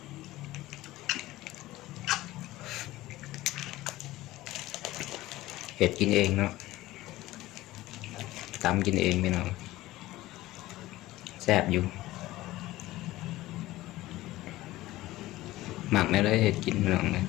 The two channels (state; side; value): quieter; right; 17.1 dB